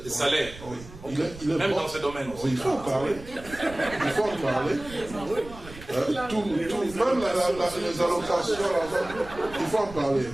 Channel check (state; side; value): noise; right; rumble, 16 dB below the sound